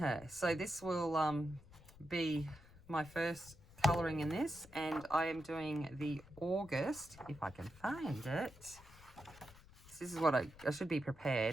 So this will be my first colouring in this, and I am doing the August, if I can find it. This is what I should be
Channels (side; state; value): left; noise; rumble, 22 dB below the sound